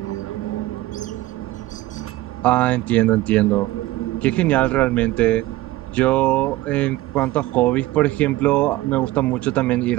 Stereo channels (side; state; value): left; quieter; 17.5 dB